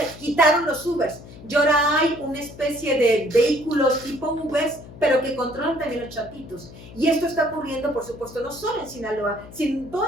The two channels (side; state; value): left; noise; hum, 17 dB below the sound